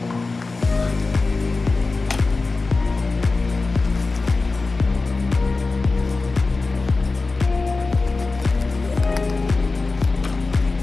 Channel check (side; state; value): right; quieter; 3.7 dB